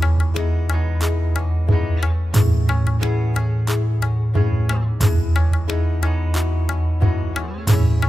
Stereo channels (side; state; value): both; normal; correlation 0.93